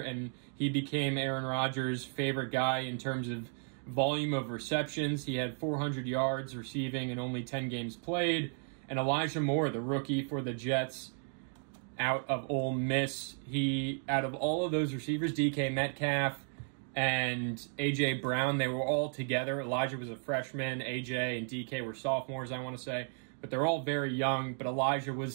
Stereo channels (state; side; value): silent; left; 55 dB below the other